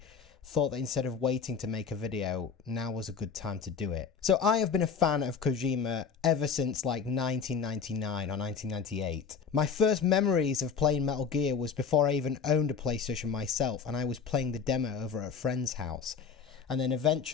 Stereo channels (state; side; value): quieter; right; 6.1 dB